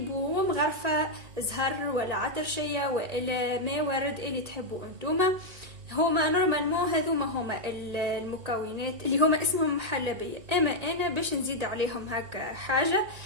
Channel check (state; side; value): late; left; 1.9 ms